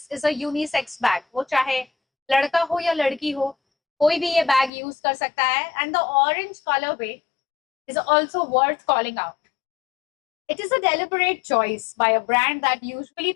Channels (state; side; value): drops out; right; at 4.7 s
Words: is a unisex bag. वो चाहे लड़का हो या लड़की हो, कोई भी ये बैग यूज कर सकता है. And the orange colour way is also worth calling out. It is a deliberate choice by a brand that usually